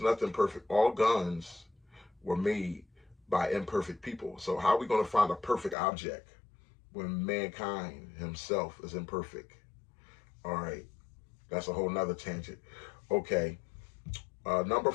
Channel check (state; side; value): drops out; right; at 5.8 s